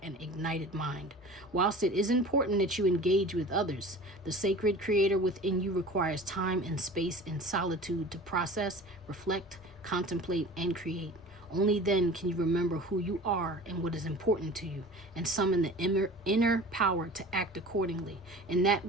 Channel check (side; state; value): both; normal; correlation 0.40